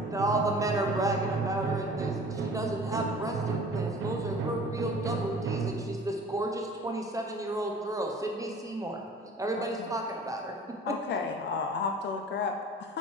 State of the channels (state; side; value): normal; both; correlation 0.45